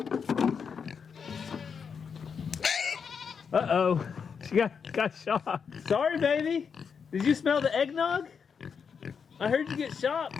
Uh-oh, she got shocked. Sorry, baby. Did you smell the eggnog? I heard you get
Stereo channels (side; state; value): right; quieter; 6.3 dB